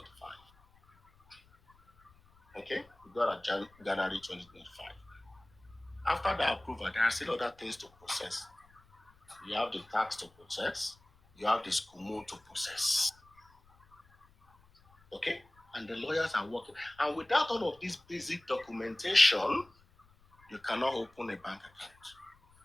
Okay? We got a January 2025. After the approval, there are still other things to process. You have the tax to process. You have the SCUMO to process. Okay? And the lawyers are working. And without all of this basic documentation, you cannot open a bank account.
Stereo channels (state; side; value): noise; left; rumble, 30 dB below the sound